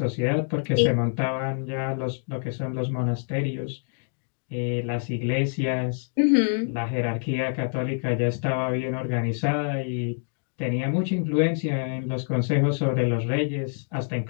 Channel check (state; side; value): silent; right; digital silence